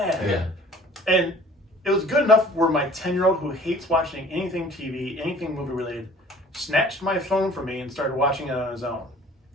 And it was good enough where my 10-year-old who hates watching anything TV, anything movie related, snatched my phone from me and started watching it on his own,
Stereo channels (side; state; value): both; normal; correlation 0.50